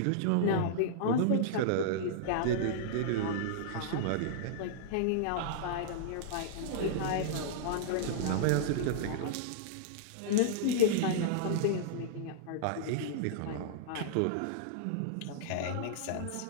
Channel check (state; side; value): different; both; correlation -0.02